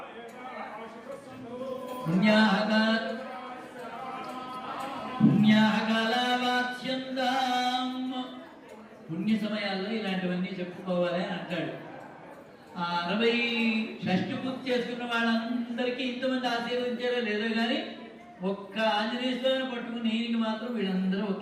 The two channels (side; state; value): both; identical; correlation 1.00